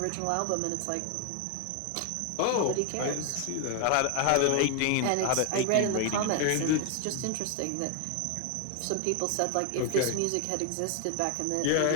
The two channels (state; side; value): different; both; correlation 0.01